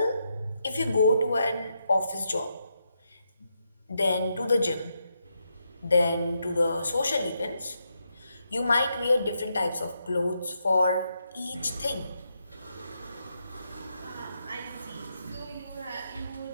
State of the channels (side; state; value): both; inverted; correlation -0.82